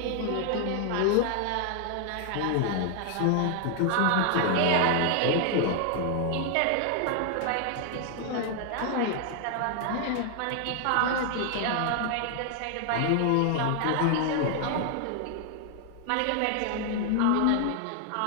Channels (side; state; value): both; different; correlation 0.00